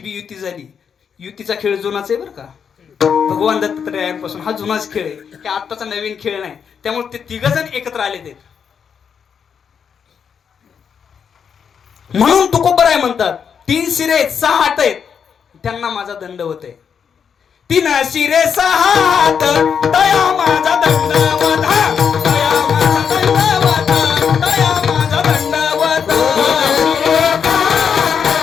बी युती झाली. युतीचा खेळ जुनाच आहे बरं का. भगवान दत्तात्रयांपासून हा जुनाच खेळ आहे, हे आत्ताचा नवीन खेळ नाही. त्यामुळे ते तिघ जण एकत्र आले ते. म्हणून तुकोबराय म्हणतात, 3 शिरे 6 हात आहेत, त्यांना माझा दंडवत आहे. 3 शिरे 6 हात, दया माझा दंडवत, दया माझा दंडवत, दया माझा दंडवत.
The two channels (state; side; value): quieter; right; 7.1 dB